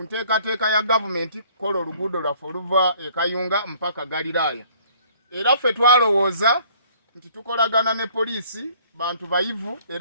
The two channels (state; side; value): inverted; both; correlation -0.58